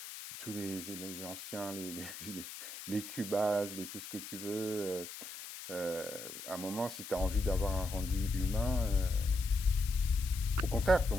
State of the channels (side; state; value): left; noise; hiss, 11 dB below the sound